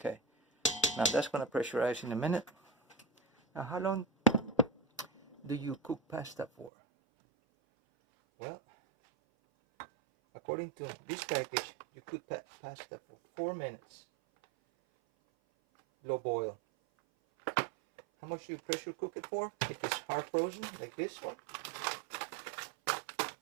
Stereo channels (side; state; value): left; drops out; at 6.7 s